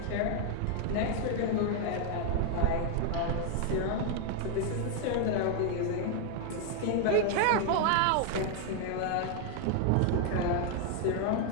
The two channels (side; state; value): both; different; correlation 0.00